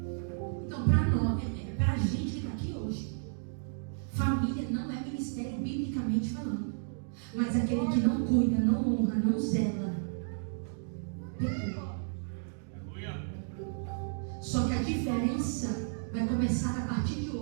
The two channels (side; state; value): left; silent; digital silence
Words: Então, para nós, para a gente que está aqui hoje, família não é ministério biblicamente falando. Mas aquele que não cuida, não honra, não zela, pecou. Só que a diferença vai começar a partir de